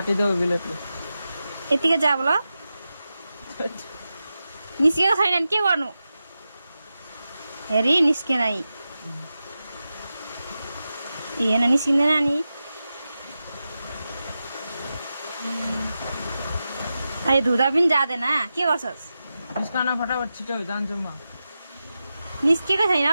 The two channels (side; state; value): both; inverted; correlation -0.92